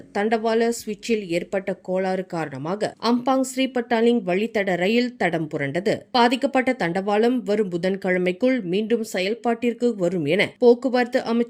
தண்டவாள சுவிட்சில் ஏற்பட்ட கோளாறு காரணமாக அம்பாங் ஸ்ரீபட்டாலிங் வழித்தட ரயில் தடம் புரண்டது. பாதிக்கப்பட்ட தண்டவாளம் வரும் புதன்கிழமைக்குள் மீண்டும் செயல்பாட்டிற்கு வரும் என போக்குவரத்து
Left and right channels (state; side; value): identical; both; correlation 1.00